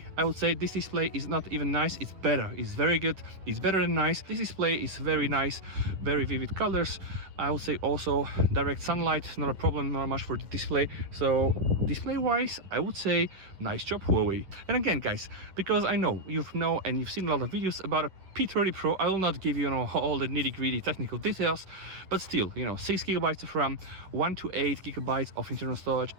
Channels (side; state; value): left; late; 11 ms